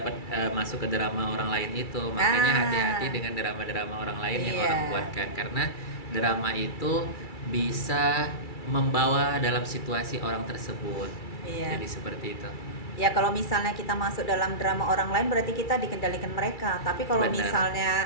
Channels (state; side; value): late; right; 2.3 ms